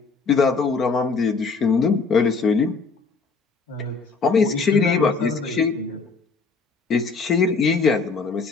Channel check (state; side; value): quieter; right; 4.6 dB